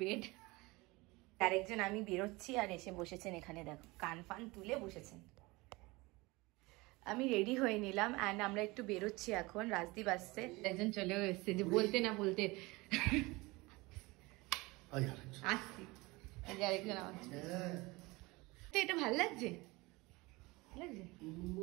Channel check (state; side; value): quieter; left; 23.1 dB